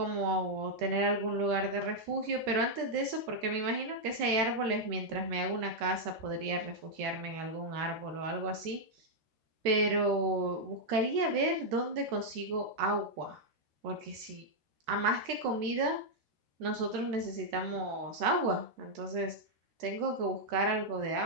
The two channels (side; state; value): left; late; 13 ms